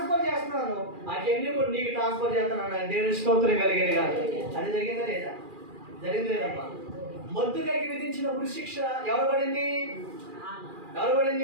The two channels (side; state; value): left; late; 2.4 ms